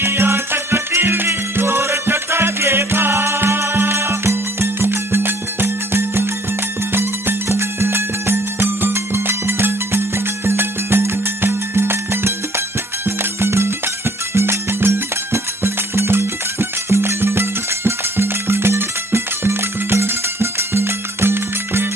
आंख कटीली चोर चटाके का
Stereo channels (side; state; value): both; normal; correlation 0.59